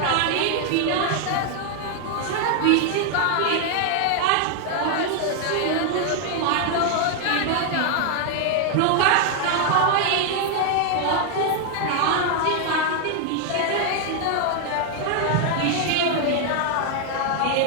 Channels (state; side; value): different; both; correlation 0.00